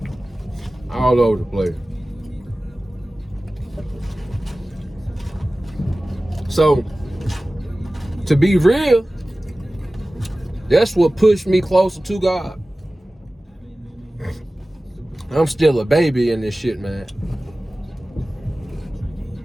All over the place. So, to be real, that's what pushed me closer to God. I'm still a baby in this shit, man.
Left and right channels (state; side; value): normal; both; correlation 0.96